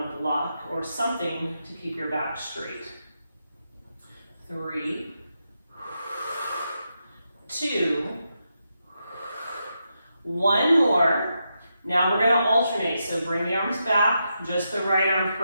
a block or something to keep your back straight. 3, 2, 1 more. Now we're going to alternate. So bring the arms back, just the right arm,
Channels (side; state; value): both; inverted; correlation -0.85